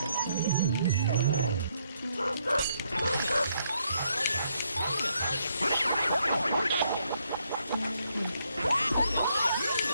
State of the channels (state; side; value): inverted; both; correlation -0.74